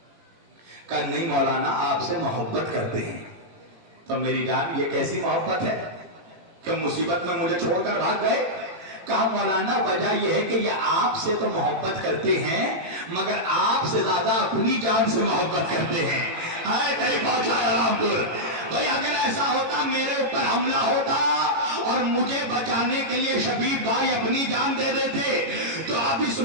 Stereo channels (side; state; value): left; late; 18 ms